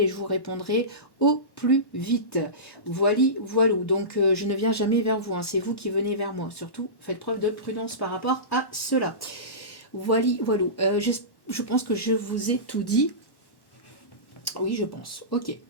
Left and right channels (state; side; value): late; right; 1.1 ms